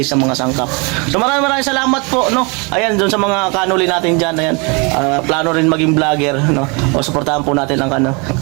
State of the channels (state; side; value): quieter; left; 31.1 dB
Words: ng mga sangkap. So maraming salamat po, no. Ayan, doon sa mga kanuli natin diyan, ayan. Plano rin maging vlogger, no. O suportahan po natin ang